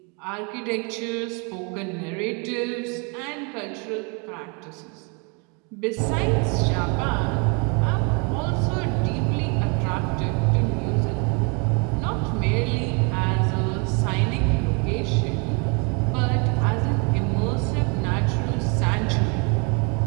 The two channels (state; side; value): quieter; left; 33.6 dB